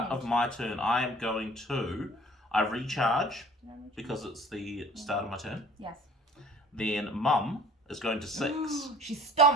of my turn. I am going to... I recharge because it's the start of my turn. Yes. Then Mum is going to 6. She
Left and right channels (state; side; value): normal; both; correlation 0.48